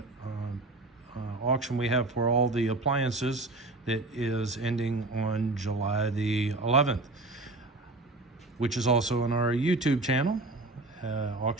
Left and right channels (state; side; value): quieter; left; 3.0 dB